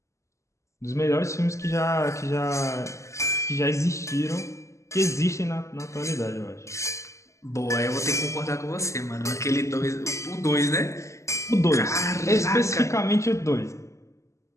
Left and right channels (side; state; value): right; late; 0.14 ms